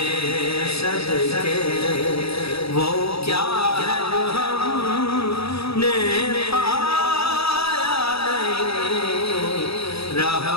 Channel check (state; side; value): late; right; 0.77 ms